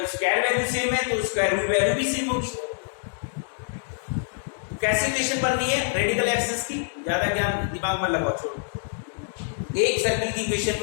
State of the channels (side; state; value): right; silent; digital silence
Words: स्क्वायर वैल्यू सेम है तो स्क्वायर रूट वैल्यू भी सेम होगी। कैसे इक्वेशन बननी है रेडिकल एक्सिस की, ज्यादा ज्ञान दिमाग में लगाओ, छोड़ो। एक सर्कल की इक्वेशन